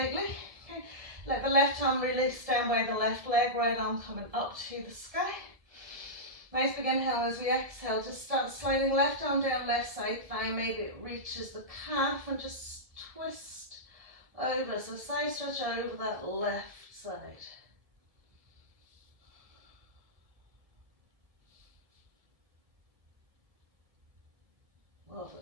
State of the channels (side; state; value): left; late; 1.7 ms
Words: Okay, let the left arm release down by the left leg, right arm coming up to the sky. Nice big inhale. As we exhale, just start sliding left arm down, left side thigh. Maybe it reaches the calf and just twist over. So side stretch over that left side. Lovely.